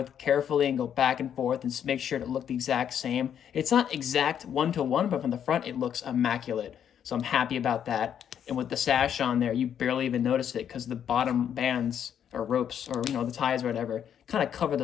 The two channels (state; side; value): quieter; right; 9.0 dB